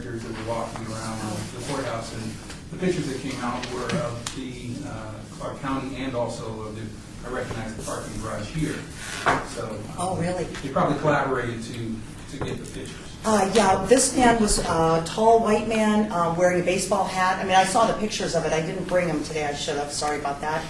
that were walking around the courthouse, and the pictures that came out were of the Clark County and also of the, I recognize the parking garage here. So. Oh, really? They probably collaborated to get the pictures. Yeah, this man was a tall white man wearing a baseball hat. I mean, I saw the pictures of it. I didn't bring them today. I should have. Sorry about that.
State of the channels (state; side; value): identical; both; correlation 1.00